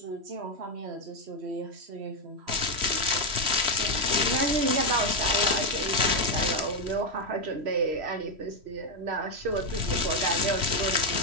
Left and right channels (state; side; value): late; left; 3.1 ms